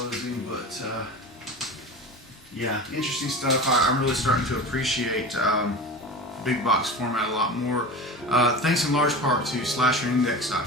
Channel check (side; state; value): both; normal; correlation 0.32